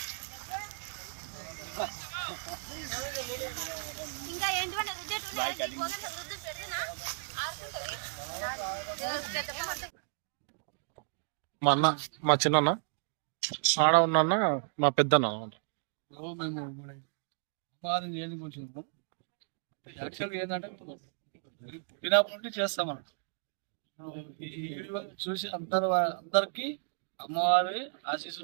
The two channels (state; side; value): silent; left; digital silence